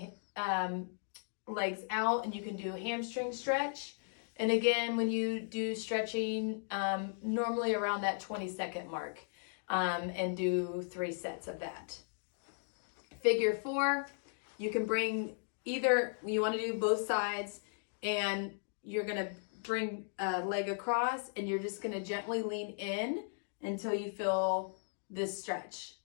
legs out, and you can do a hamstring stretch. And again, when you do stretching, normally around that 20-second mark, and do 3 sets of that. Figure 4, you can bring either, you want to do both sides, and you're going to bring a leg across, and you're just going to gently lean in until you feel this stretch.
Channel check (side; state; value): right; silent; digital silence